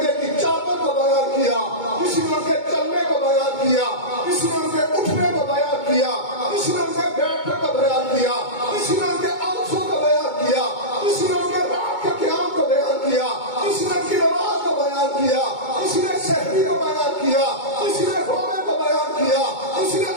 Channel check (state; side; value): late; right; 2.2 ms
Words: کی چادر کو بیان کیا، کسی نے ان کے چلنے کو بیان کیا، کسی نے ان کے اٹھنے کو بیان کیا، کسی نے ان کے بیٹھنے کو بیان کیا، کسی نے ان کے آنسوں کو بیان کیا، کسی نے ان کے رات کے قیام کو بیان کیا، کسی نے ان کی نماز کو بیان کیا، کسی نے شہری کو بیان کیا، کسی نے رونے کو بیان کیا، کسی نے